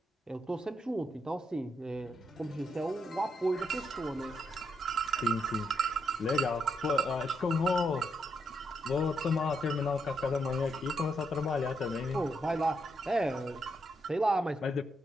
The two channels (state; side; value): normal; both; correlation 0.79